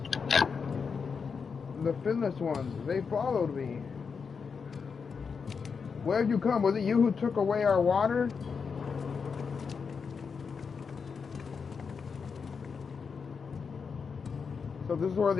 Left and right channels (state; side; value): quieter; right; 5.7 dB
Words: The finless ones, they followed me. Where have you come? Was it you who took away our water? So this is where